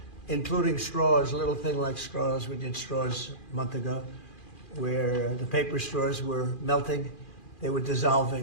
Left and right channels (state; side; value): late; right; 2.4 ms